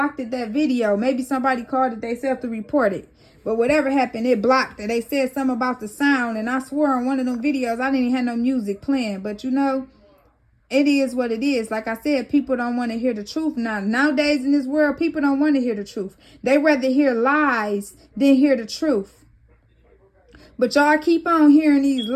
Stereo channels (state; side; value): identical; both; correlation 1.00